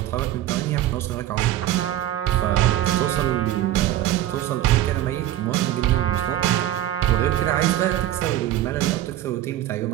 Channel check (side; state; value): left; quieter; 13.3 dB